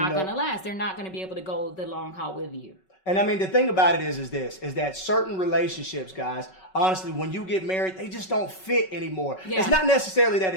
going to last. They're not going to be able to go the long haul with you. And I mean, the thing about it is that certain relationships, guys, honestly, when you get married, they just don't fit anymore. Yeah. It's not necessarily that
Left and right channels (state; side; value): late; right; 5.3 ms